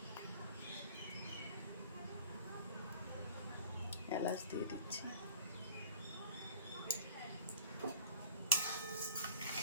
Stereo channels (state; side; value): inverted; both; correlation -0.47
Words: এলাচ দিয়ে দিচ্ছি।